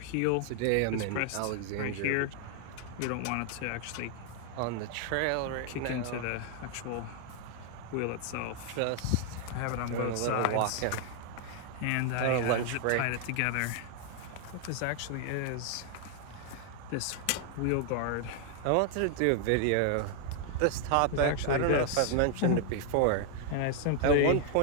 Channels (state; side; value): different; both; correlation 0.00